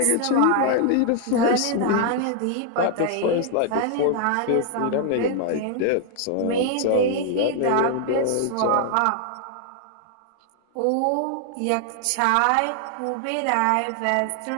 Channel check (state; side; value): different; both; correlation 0.00